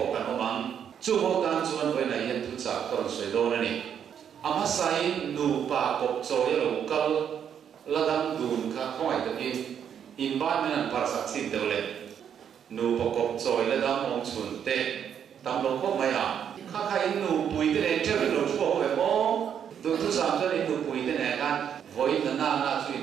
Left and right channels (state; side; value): quieter; left; 8.4 dB